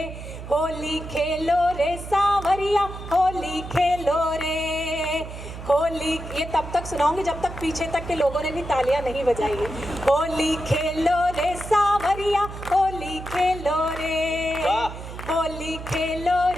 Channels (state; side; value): noise; right; hum, 11 dB below the sound